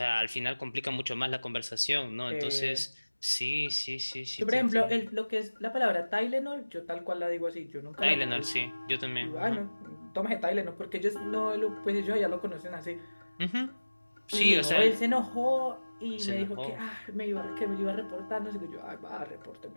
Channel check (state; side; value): inverted; both; correlation -1.00